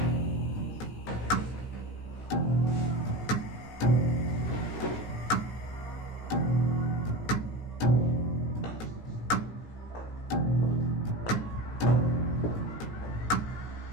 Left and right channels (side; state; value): right; late; 17 ms